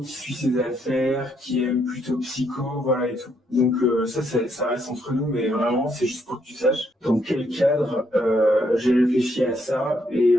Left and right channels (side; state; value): both; normal; correlation 0.74